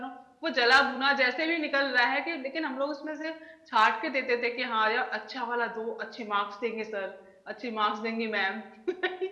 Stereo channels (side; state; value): both; identical; correlation 1.00